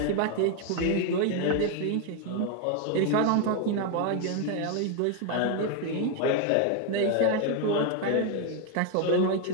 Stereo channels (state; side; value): different; both; correlation 0.01